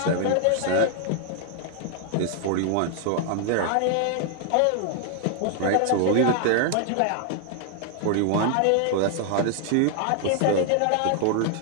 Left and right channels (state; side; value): different; both; correlation 0.00